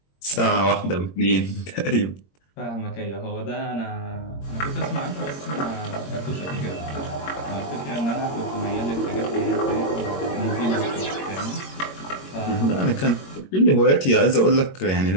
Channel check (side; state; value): right; late; 21 ms